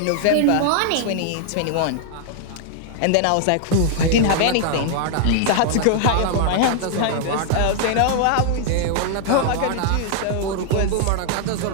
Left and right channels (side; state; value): both; different; correlation -0.01